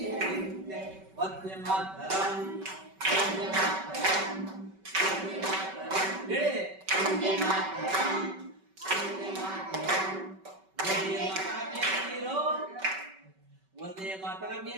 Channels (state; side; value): late; left; 5.2 ms